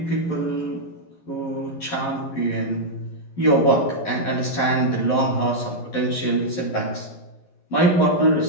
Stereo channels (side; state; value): right; late; 11 ms